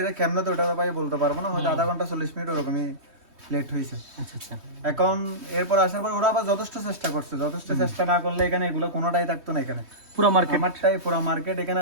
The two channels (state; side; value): late; left; 3.2 ms